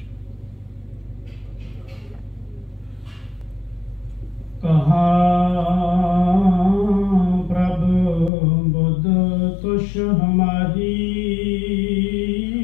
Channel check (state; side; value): drops out; right; at 8.3 s